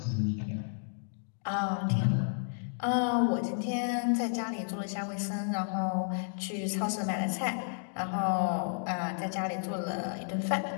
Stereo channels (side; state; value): right; silent; digital silence